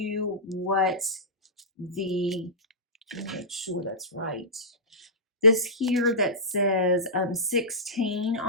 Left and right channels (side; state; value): both; normal; correlation -0.18